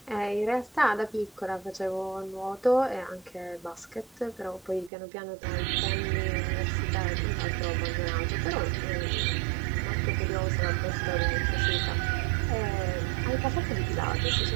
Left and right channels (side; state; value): left; drops out; at 4.9 s